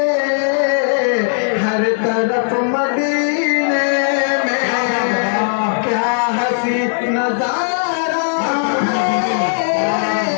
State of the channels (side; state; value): right; silent; digital silence